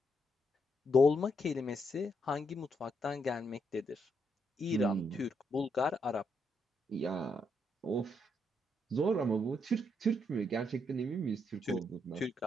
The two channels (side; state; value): both; normal; correlation 0.78